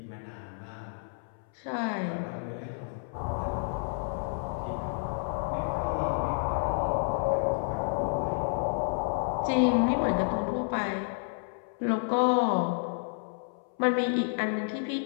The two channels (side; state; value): right; silent; 58 dB below the other